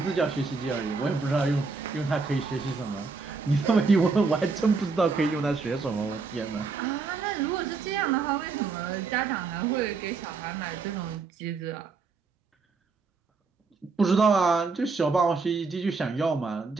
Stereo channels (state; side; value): quieter; left; 4.4 dB